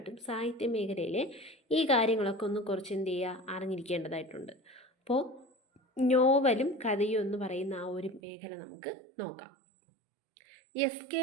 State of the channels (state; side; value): drops out; left; at 8.2 s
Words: സാഹിത്യ മേഖലയിലെ ഈ കാര്യങ്ങളൊക്കെ ഒന്ന് കുറച്ച് എന്ത് ചെയ്യുക അറിഞ്ഞിരിക്കേണ്ടതായിട്ടുണ്ട്. അപ്പോൾ നോവലും കഥയും എന്ന് പറയുന്ന ആ ഒരു മേഖല നമുക്ക് നോക്കാം. SK